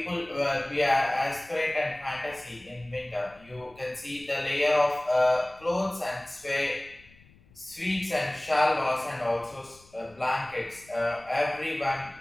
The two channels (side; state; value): left; noise; rumble, 27 dB below the sound